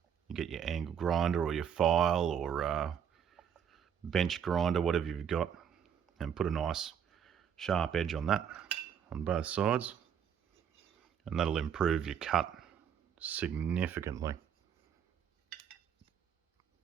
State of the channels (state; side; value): quieter; left; 8.4 dB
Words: you get your angle grinder or your file or bench grinder, whatever you've got, and put a nice sharp edge on that on both sides, and that'll improve your cut significantly.